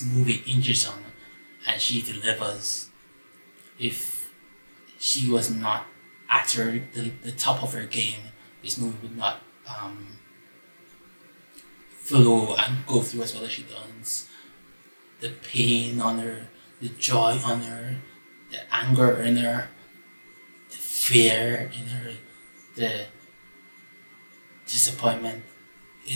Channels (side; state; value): both; inverted; correlation -1.00